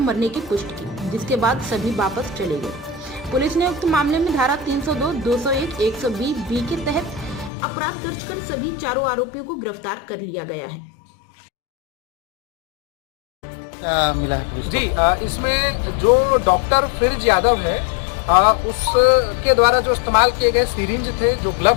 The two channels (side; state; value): right; drops out; at 7.5 s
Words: की पुष्टि की, जिसके बाद सभी वापस चले गए। पुलिस ने उक्त मामले में धारा 302, 201, 120B के तहत अपराध दर्ज कर सभी चारों आरोपियों को गिरफ्तार कर लिया गया है। क्या मिला है पुलिस जी? इसमें जो डॉक्टर फ्रिज यादव है उसके द्वारा जो इस्तेमाल किए गए सिरिंज थे, जो